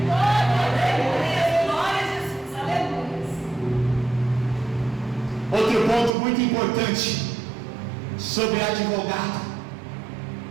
Glória a Jesus, aleluia. Outro ponto muito importante sobre advogado:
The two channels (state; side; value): drops out; left; at 6.1 s